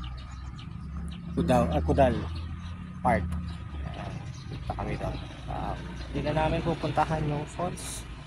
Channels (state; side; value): identical; both; correlation 1.00